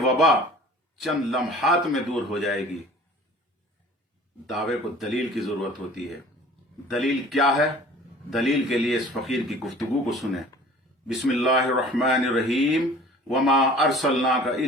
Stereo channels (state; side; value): normal; both; correlation 0.47